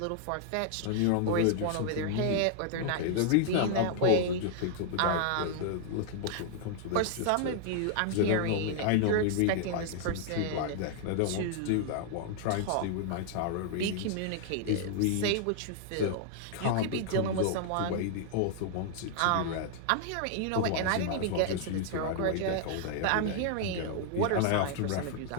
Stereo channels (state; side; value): different; both; correlation 0.00